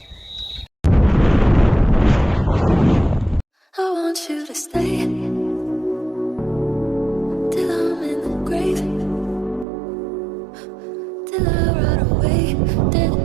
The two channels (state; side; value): drops out; left; at 9.7 s